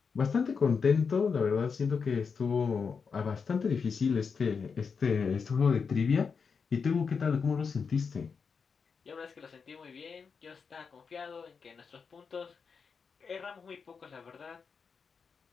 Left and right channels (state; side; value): quieter; right; 5.7 dB